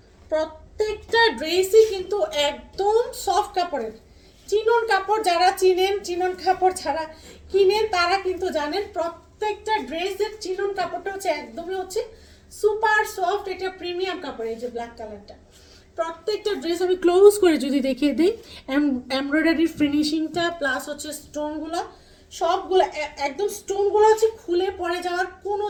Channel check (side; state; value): both; identical; correlation 1.00